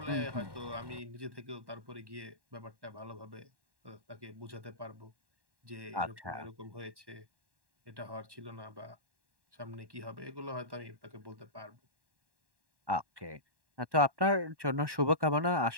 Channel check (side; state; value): left; late; 1.1 ms